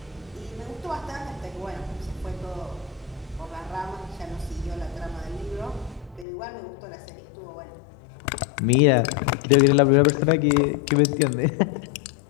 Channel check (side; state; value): right; drops out; at 6.2 s